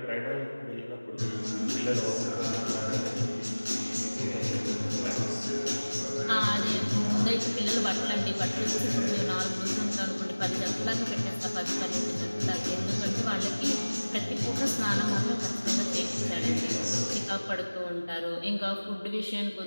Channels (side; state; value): both; inverted; correlation -1.00